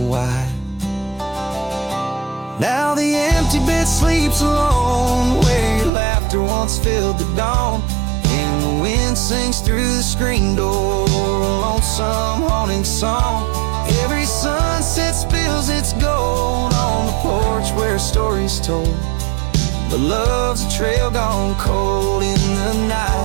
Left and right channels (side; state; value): left; drops out; at 5.9 s